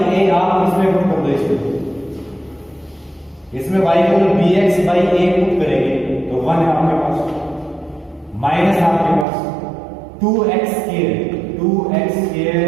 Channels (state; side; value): drops out; left; at 9.2 s